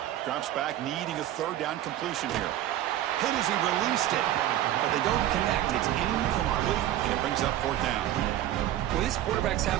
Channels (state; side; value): quieter; left; 12.9 dB